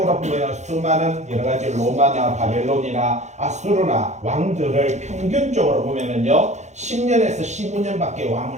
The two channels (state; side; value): late; left; 0.33 ms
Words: 보면 수많은 여러 가지 로마나 바벨론이나 아수르나 왕들을 평균적으로 보면은요 10년에서 15년밖에